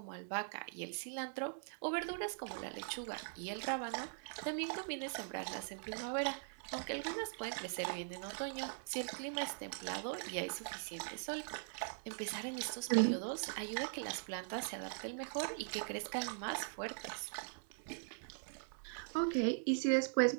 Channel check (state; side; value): silent; left; 50 dB below the other